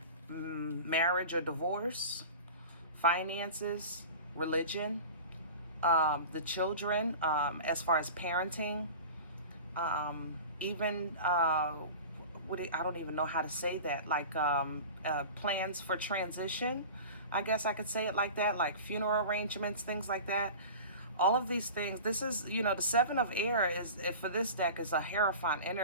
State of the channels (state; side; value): inverted; both; correlation -0.36